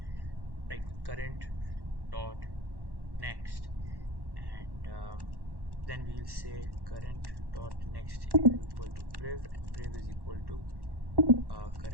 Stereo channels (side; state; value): left; late; 1.1 ms